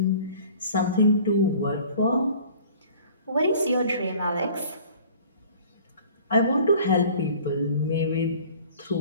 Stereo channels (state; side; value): inverted; both; correlation -0.48